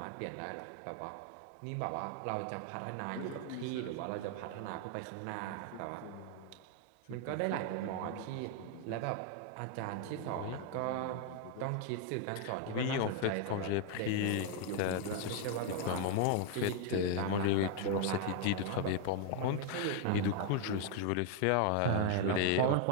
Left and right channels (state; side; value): different; both; correlation 0.00